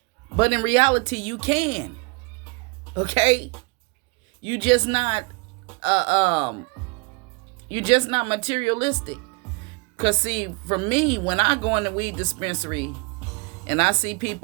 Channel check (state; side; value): quieter; left; 30.3 dB